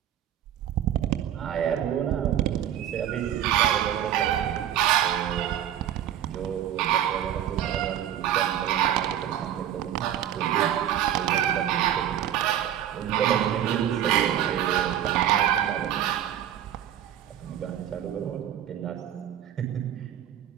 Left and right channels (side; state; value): left; quieter; 10.9 dB